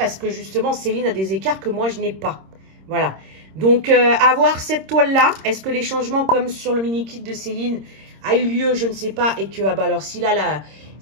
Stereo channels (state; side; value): late; left; 26 ms